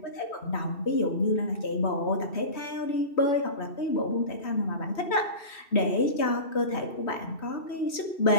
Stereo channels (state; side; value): late; right; 3.2 ms